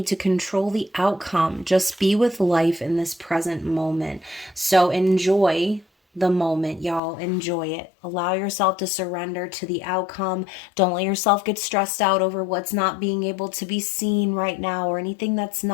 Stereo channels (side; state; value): right; drops out; at 7.0 s